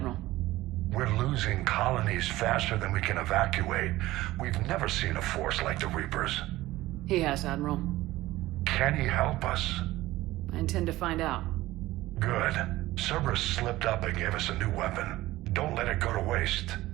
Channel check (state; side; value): quieter; left; 17.2 dB